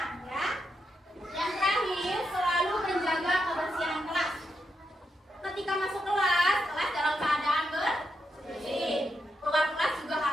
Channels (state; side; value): normal; both; correlation 0.83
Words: ya. Yang terakhir, selalu menjaga kebersihan kelas. Ketika masuk kelas dalam keadaan bersih. Keluar kelas juga